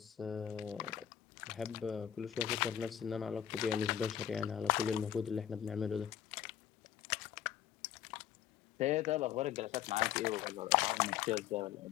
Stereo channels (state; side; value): quieter; right; 10.4 dB